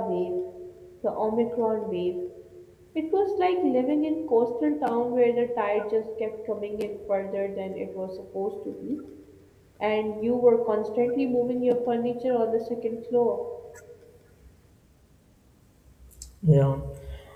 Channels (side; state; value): both; identical; correlation 1.00